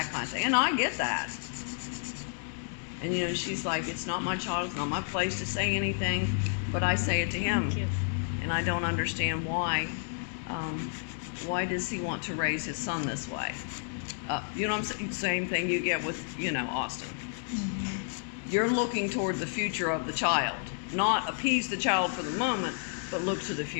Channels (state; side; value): silent; right; digital silence